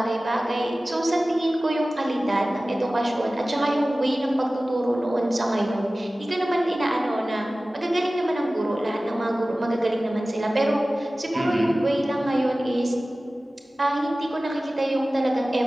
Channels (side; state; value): both; normal; correlation 0.97